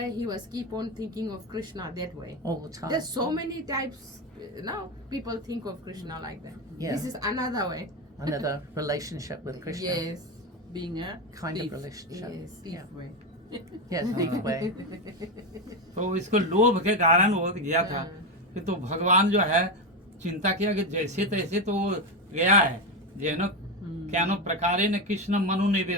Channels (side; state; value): both; normal; correlation 0.13